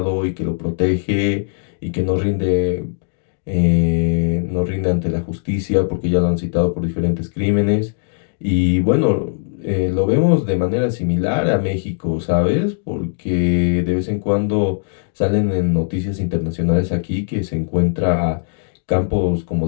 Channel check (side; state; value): right; silent; digital silence